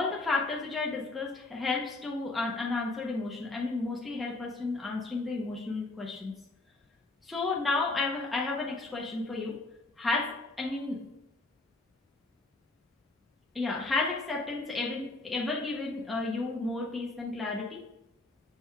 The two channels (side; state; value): right; quieter; 3.0 dB